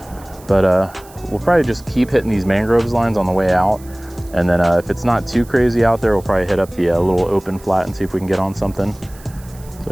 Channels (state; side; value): noise; right; hiss, 23 dB below the sound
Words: But we'll probably just keep hitting these mangroves lines on the way out. And then if it's not too crazy out there, we'll probably hit up the little open flat and see if we can get on something.